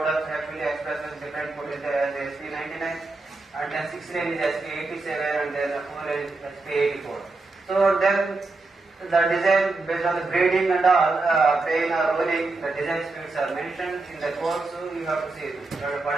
actually express as different code is as SP99, and then 6 lane is SP87, and then 4 lane is SP84. So then the design based on the grading and all, plane or rolling, the design speeds are mentioned in the code, so you have to see it.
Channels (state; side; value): quieter; left; 3.4 dB